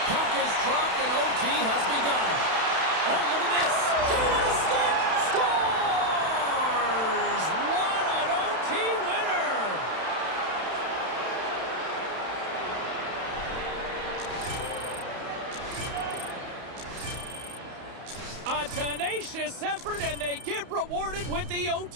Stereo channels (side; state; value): left; late; 31 ms